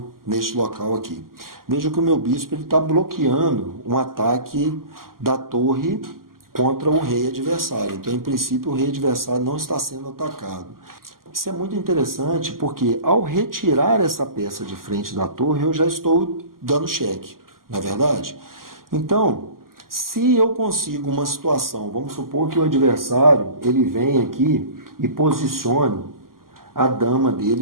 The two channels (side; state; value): left; late; 0.91 ms